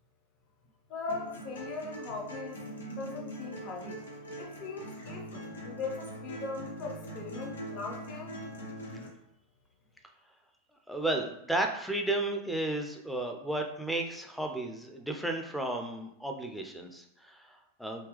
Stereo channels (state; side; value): normal; both; correlation 0.33